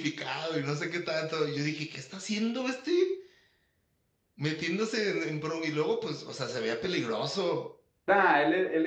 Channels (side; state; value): both; identical; correlation 1.00